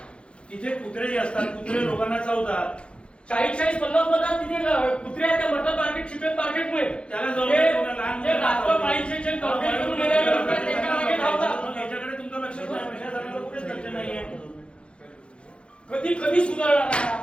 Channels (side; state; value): right; late; 0.057 ms